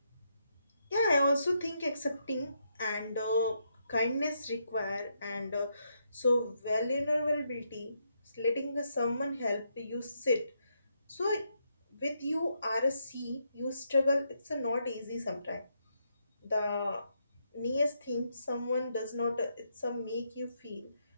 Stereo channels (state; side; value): inverted; both; correlation -0.79